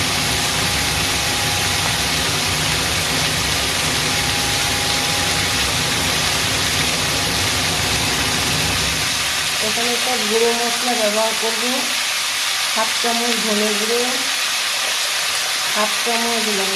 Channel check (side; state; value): both; identical; correlation 1.00